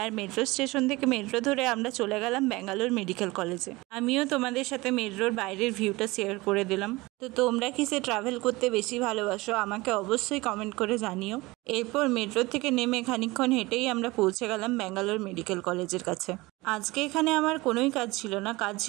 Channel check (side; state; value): left; quieter; 21.7 dB